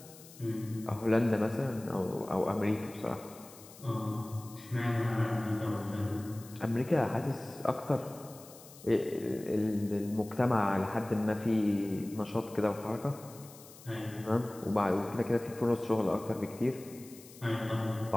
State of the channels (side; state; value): left; noise; hiss, 19 dB below the sound